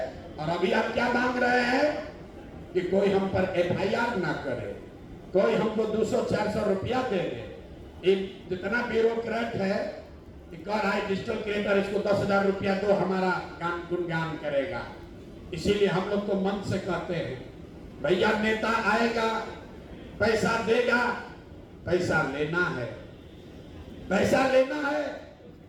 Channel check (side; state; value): both; identical; correlation 1.00